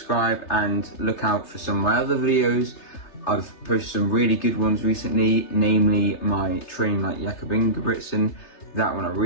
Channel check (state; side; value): late; right; 3.3 ms